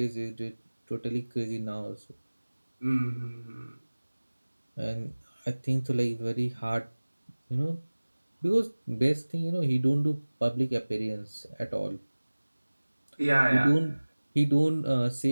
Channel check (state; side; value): inverted; both; correlation -1.00